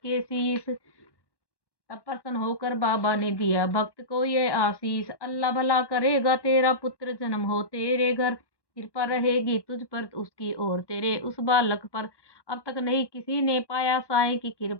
शीस, तब प्रसन्न होकर बाबा ने दिया भक्त को ये आशीष। अल्लाह भला करेगा तेरा पुत्र जन्म हो तेरे घर, कृपा रहेगी तुझ पर उसकी और तेरे उस बालक पर। अब तक नहीं किसी ने पाया साईं की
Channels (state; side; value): late; right; 1.1 ms